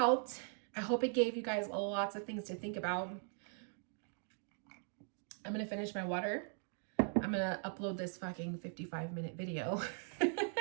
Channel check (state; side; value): silent; left; 51 dB below the other